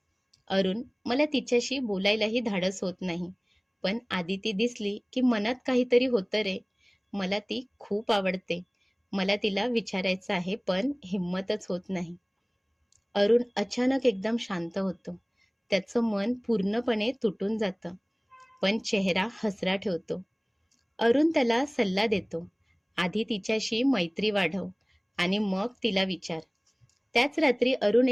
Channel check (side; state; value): both; identical; correlation 1.00